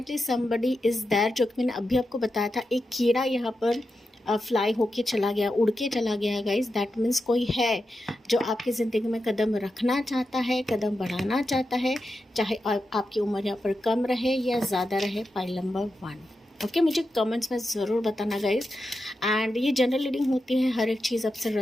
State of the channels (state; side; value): normal; both; correlation 0.89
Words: समबडी इज़ देयर, जो कि मैंने अभी आपको बताया था। एक कीड़ा यहाँ पर फ्लाई होके चला गया, उड़ के चला गया गाइस। दैट मीन्स कोई है जो आपकी ज़िंदगी में कदम रखना चाहता है, कदम बढ़ाना चाहता है, चाहे आपकी उम्र यहाँ पर कम रहे या ज़्यादा रहे। Pile number 1। ओके, मुझे कमेंट्स में ज़रूर बताना गाइस। एंड ये जनरल रीडिंग होती है, हर एक चीज़ आपसे